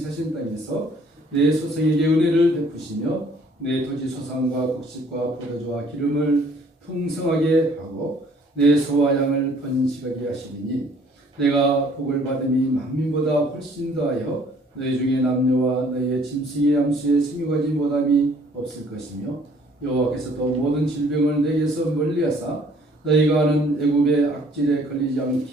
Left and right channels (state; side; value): normal; both; correlation 0.59